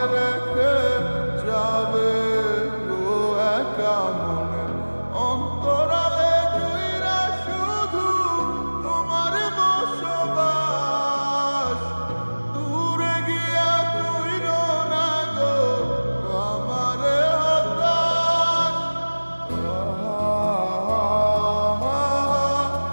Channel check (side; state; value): both; inverted; correlation -1.00